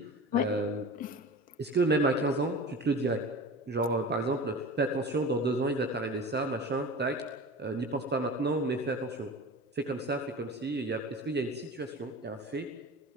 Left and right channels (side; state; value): both; normal; correlation 0.34